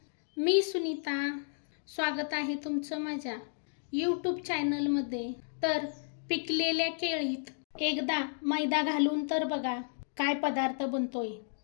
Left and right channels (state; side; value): silent; right; digital silence